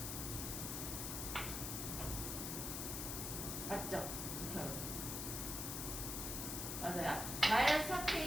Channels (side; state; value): left; noise; hiss, 3 dB below the sound